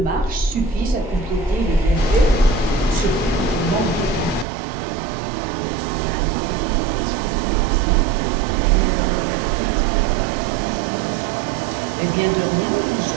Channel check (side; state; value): left; drops out; at 4.5 s